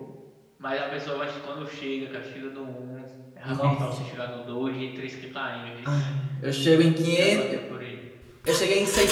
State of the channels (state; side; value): identical; both; correlation 1.00